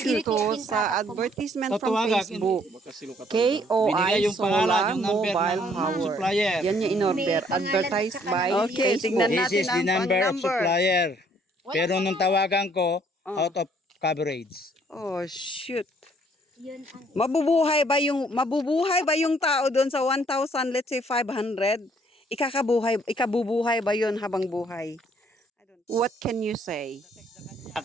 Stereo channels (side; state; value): both; normal; correlation 0.63